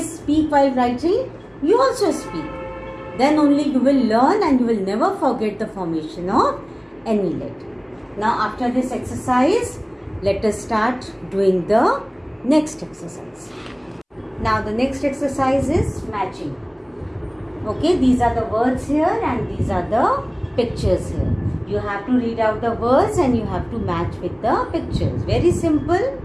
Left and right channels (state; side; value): identical; both; correlation 1.00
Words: speak while writing, you also speak. Then only you will learn and you will never forget the formation of any letter. Now after this exercise, let us start doing the next exercise. Now the next exercise is matching. Okay, these are the words here and these are the pictures here. You have to read out the words and you have to match with the pictures. Very simple.